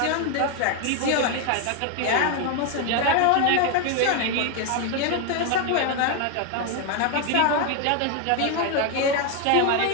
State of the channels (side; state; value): both; different; correlation 0.01